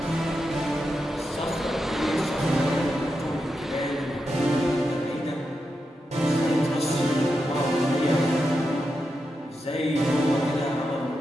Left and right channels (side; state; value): both; normal; correlation 0.87